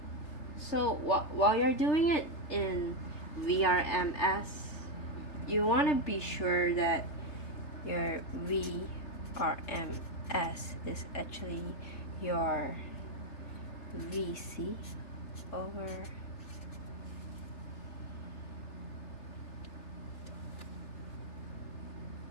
So while you're doing it in VRMS, you want to be sure that your V RMS is actually your VC over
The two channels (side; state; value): right; late; 3.3 ms